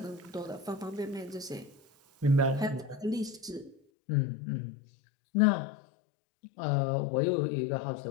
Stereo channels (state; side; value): drops out; right; at 3.8 s